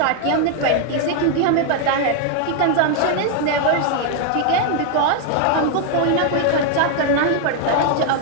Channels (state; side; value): different; both; correlation 0.00